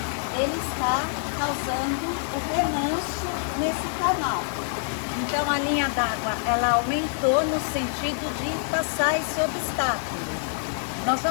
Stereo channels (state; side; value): silent; right; 58 dB below the other